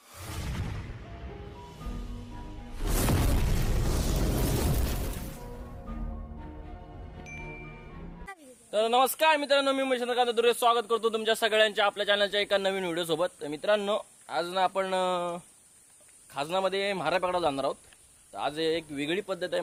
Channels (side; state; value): both; identical; correlation 1.00